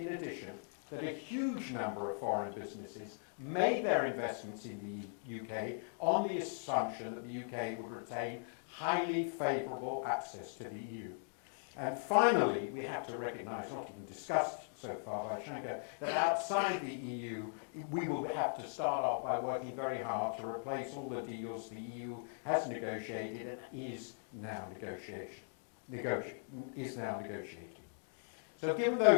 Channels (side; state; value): right; silent; digital silence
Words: addition, that a huge number of foreign businesses made their investments in the UK on the assumption that the UK would retain highly favourable access to the EU. And finally, we have to recognise, not even discussed so far by Shanker, that outside the EU, we will have to start off by working very hard to replace all the deals the EU has negotiated and is now negotiating. So given